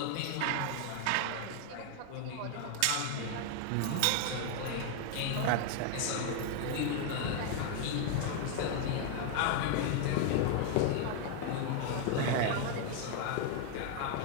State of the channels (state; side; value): different; both; correlation 0.00